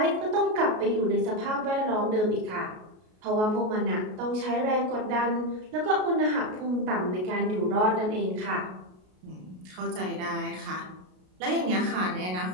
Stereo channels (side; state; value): left; late; 33 ms